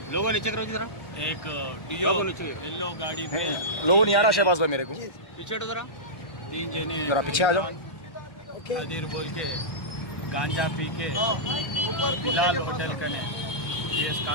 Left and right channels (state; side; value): late; right; 1.3 ms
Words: लोगों नीचे करो जरा, एक डियो येलो गाड़ी पे लोगों नहीं आ रहा शहबाज भाई मेरे को। पीछे हटो जरा। 3 जने जरा पीछे आ जाओ। खादिर बोल के गांजा पी के बिलाल होटल कने PS